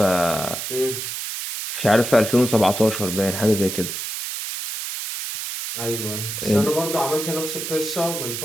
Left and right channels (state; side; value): noise; right; hiss, 5 dB below the sound